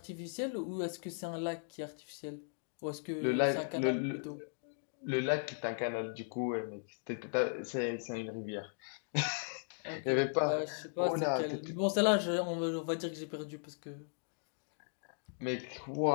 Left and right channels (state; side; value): silent; right; digital silence